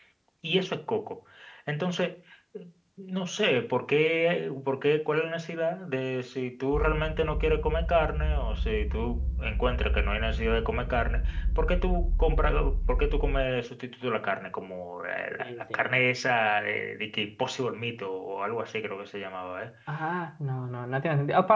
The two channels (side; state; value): both; identical; correlation 1.00